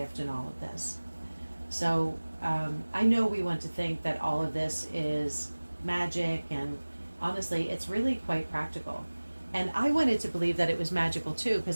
in all of this. So I know we want to think that all of this is magic, and honestly it's really quite practical. And I wanted to believe that it was magical too,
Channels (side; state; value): both; inverted; correlation -1.00